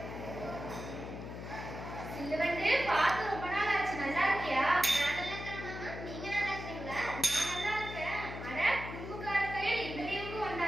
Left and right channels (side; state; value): left; noise; hum, 9 dB below the sound